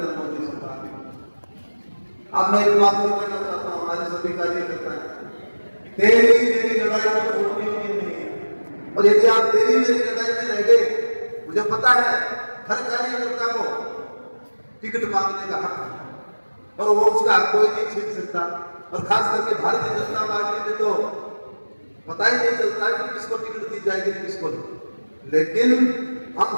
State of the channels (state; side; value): inverted; both; correlation -1.00